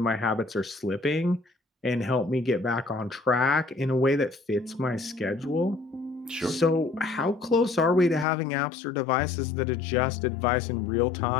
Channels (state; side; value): drops out; right; at 8.2 s